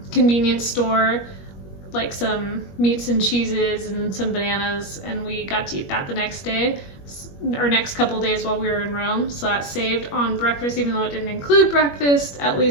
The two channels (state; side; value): late; right; 21 ms